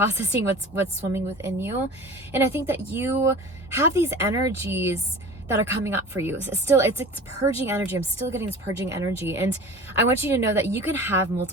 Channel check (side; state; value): both; normal; correlation 0.38